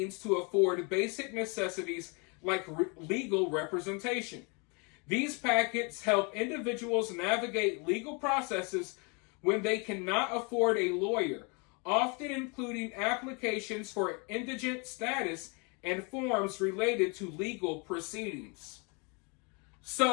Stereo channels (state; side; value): quieter; right; 32.5 dB